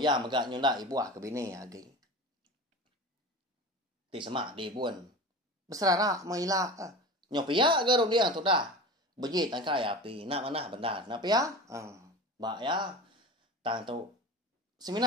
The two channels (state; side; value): normal; both; correlation 0.31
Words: ya megak nyundak ibuah ke bini lagi. Ti semak di buan. Beserarak mailak. Nyopiak ke rum dia tu dah. Beji tangkai api. Nak mana benar. Nak pia? Bak ya. Tang tu.